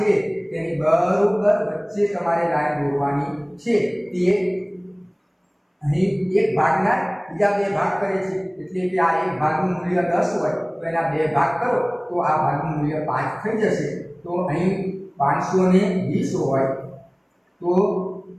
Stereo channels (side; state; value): both; identical; correlation 1.00